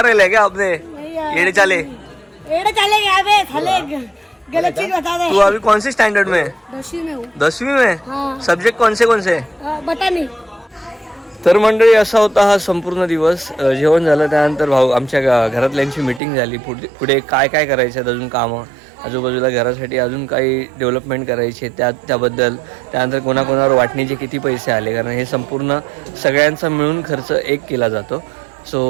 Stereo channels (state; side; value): drops out; left; at 16.2 s